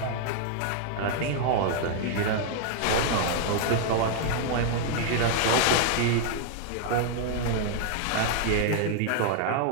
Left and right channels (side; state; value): both; different; correlation 0.00